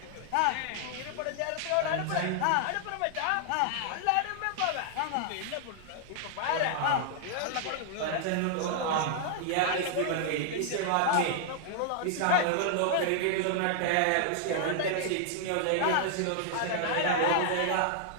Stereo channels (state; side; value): different; both; correlation 0.00